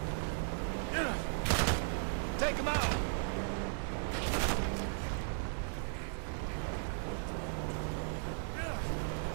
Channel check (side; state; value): left; silent; digital silence